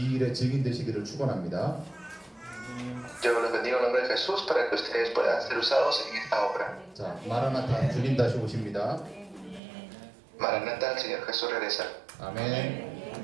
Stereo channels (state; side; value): drops out; left; at 9.6 s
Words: 일에 증인 되시기를 축원합니다. Yo los bendigo en nombre de Jesús para que ustedes puedan ser usados en esta obra. 자, 마라나타 주님 다시 오십니다. Maranatha, el Señor Jesús regresa. 아멘.